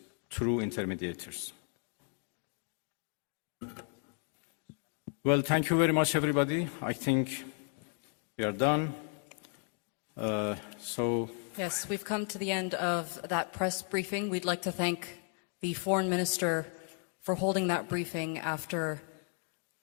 through intermediators. Well, thank you very much, everybody. I think we are done. Yes, we've come to the end of that press briefing. We'd like to thank the Foreign Minister for holding that briefing after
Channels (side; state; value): right; quieter; 37.5 dB